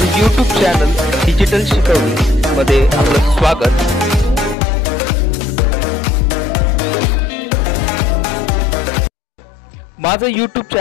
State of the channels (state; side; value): drops out; right; at 4.5 s